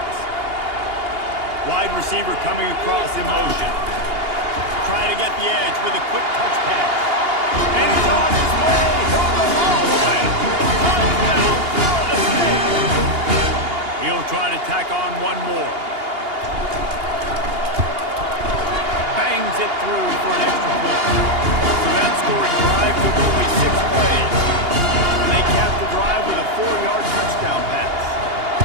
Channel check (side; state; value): left; late; 2.8 ms